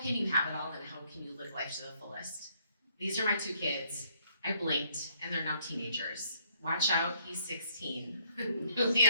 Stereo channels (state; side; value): inverted; both; correlation -0.66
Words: you have it all and how can you live life to the fullest. These are my two kids. I blinked and they're now teenagers. Watch out, he's 16, newly